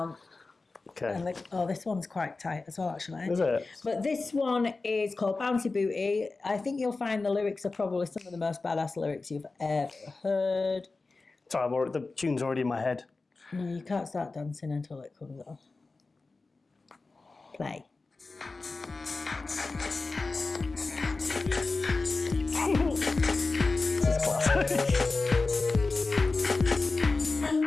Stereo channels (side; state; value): right; quieter; 3.7 dB